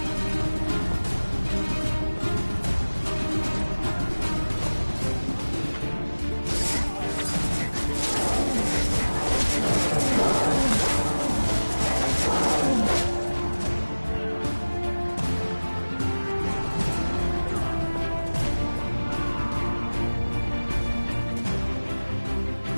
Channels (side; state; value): both; inverted; correlation -1.00